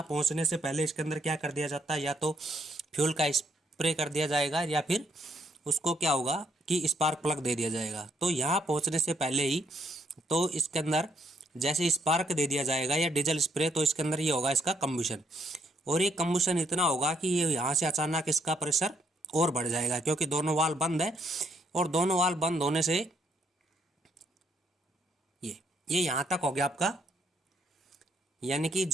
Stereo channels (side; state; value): both; normal; correlation 0.73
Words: पहुँचने से पहले इसके अंदर क्या कर दिया जाता है, या तो फ्यूल का स्प्रे कर दिया जाएगा या फिर उसको क्या होगा कि स्पार्क प्लग दे दिया जाएगा। तो यहाँ पहुँचने से पहले ही तो इसके अंदर जैसे स्पार्क दे दिया जाएगा या डीजल स्प्रे, तो इसके अंदर ये होगा इसका कम्बुशन। और ये कम्बुशन इतना होगा कि ये यहाँ से अचानक इसका प्रेशर और बढ़ जाएगा, क्योंकि दोनों वाल्व बंद है। और दोनों वाल्व बंद होने से ये यहाँ तक हो गया आपका। यानी कि